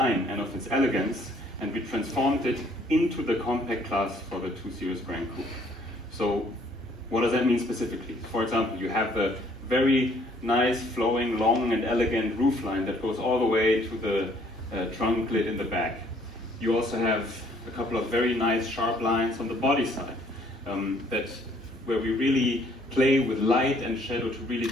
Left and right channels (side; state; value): both; normal; correlation 0.62